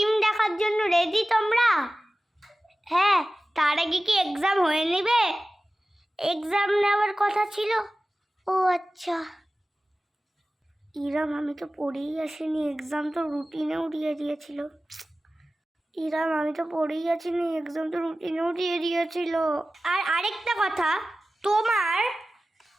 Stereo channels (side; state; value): both; normal; correlation 0.96